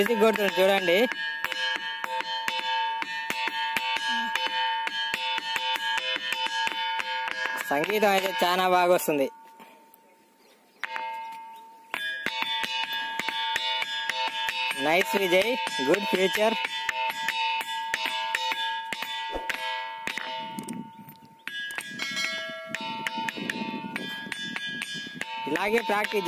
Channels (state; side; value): identical; both; correlation 1.00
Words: కొడుతుండు చూడండి. సంగీతం అయితే చాలా బాగా వస్తుంది. Nice Vijay, good future. ఇలాగే ప్రాక్టీస్